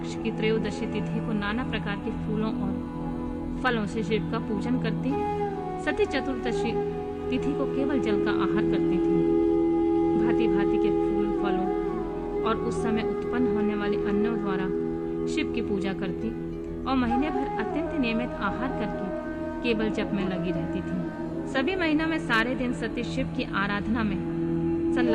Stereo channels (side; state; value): both; identical; correlation 1.00